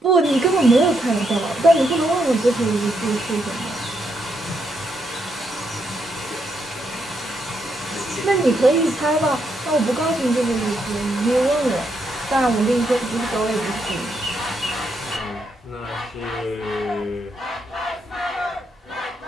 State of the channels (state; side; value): normal; both; correlation 0.78